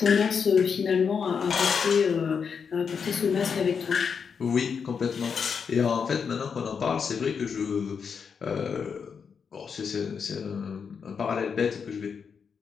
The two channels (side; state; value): right; quieter; 6.3 dB